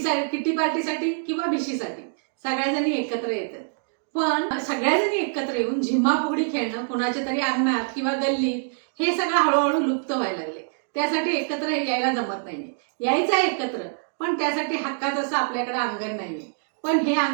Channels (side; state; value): left; silent; digital silence